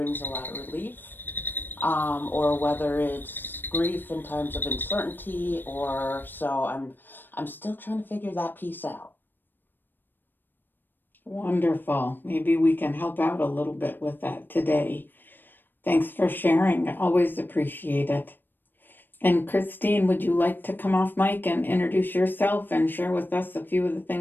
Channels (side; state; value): right; late; 0.094 ms